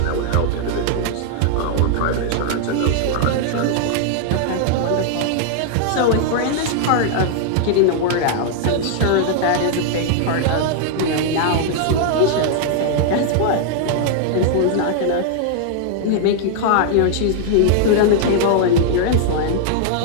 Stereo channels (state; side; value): different; both; correlation -0.01